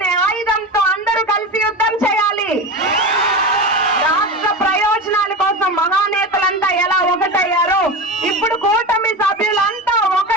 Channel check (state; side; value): normal; both; correlation 0.24